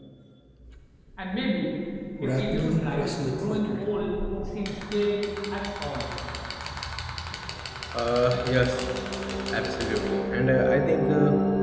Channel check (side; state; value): both; identical; correlation 1.00